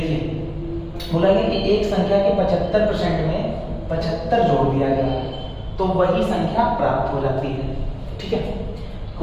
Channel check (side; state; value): both; identical; correlation 1.00